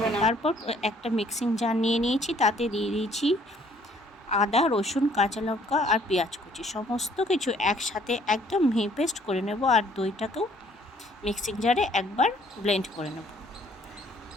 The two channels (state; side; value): normal; both; correlation 0.61